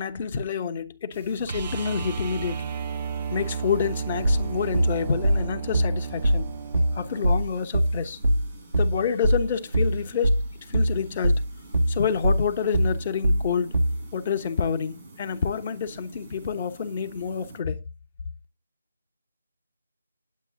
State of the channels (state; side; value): inverted; both; correlation -0.79